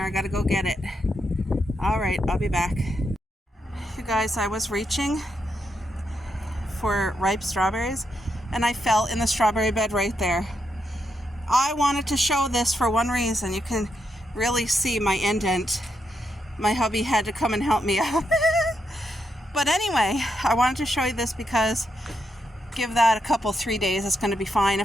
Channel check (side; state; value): both; normal; correlation 0.82